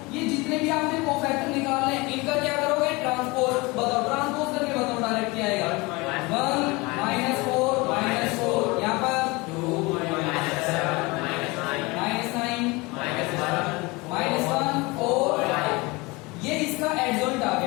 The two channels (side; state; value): right; quieter; 24.5 dB